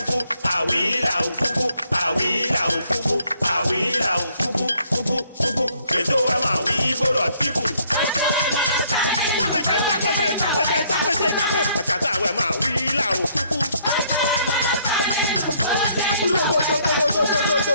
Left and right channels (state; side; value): inverted; both; correlation -0.66